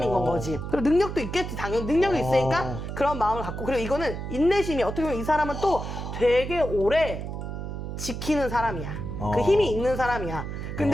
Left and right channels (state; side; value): noise; right; hum, 6 dB below the sound